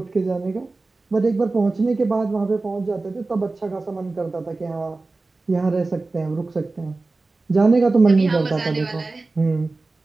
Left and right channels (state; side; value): quieter; left; 3.4 dB